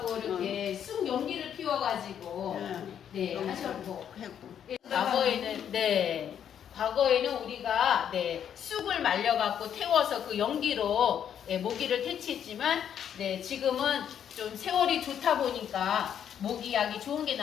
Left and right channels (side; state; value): right; quieter; 9.0 dB